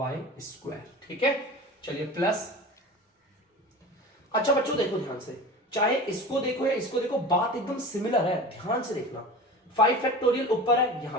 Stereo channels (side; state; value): both; normal; correlation 0.34